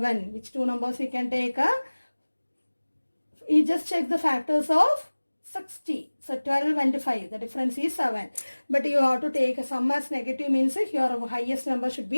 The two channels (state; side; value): inverted; both; correlation -1.00